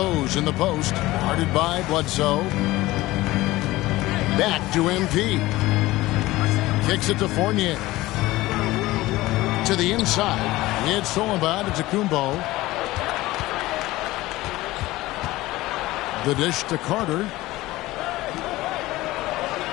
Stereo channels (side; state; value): right; quieter; 18.2 dB